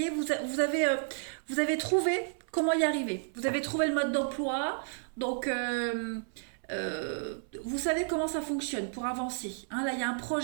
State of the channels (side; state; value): left; silent; 57 dB below the other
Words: est, vous avez trouvé comment y arriver. Vous avez trouvé le mode d'emploi, donc vous savez comment ça fonctionne pour avancer. Hein, là, il y a un